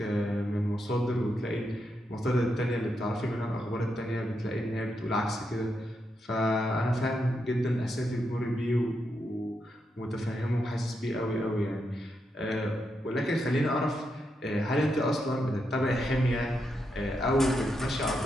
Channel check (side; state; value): both; normal; correlation 0.83